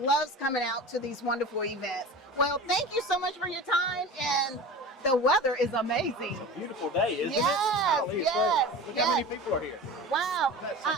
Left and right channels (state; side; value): normal; both; correlation 0.34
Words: loves coming out to these wonderful events. Well, thank you so much for your time, and the weather is amazing. Beautiful day, isn't it? Yes, Golly, yes, look how many yes. people are here. Wow,